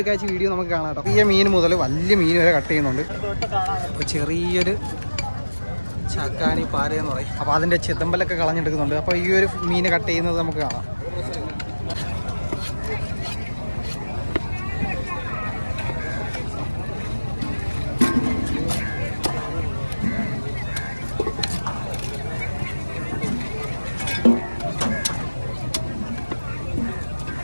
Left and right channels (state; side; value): inverted; both; correlation -1.00